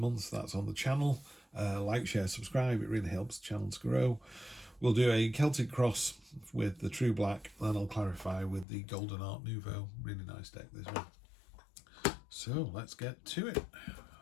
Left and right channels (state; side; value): drops out; right; at 8.7 s